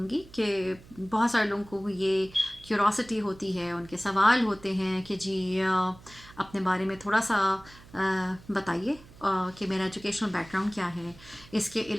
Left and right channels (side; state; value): right; noise; hum, 22 dB below the sound